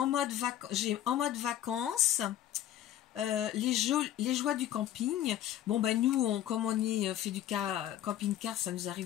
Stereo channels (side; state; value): right; quieter; 11.9 dB